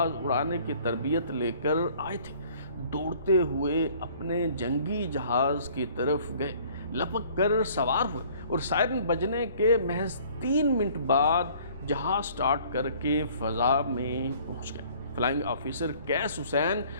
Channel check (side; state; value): both; inverted; correlation -0.55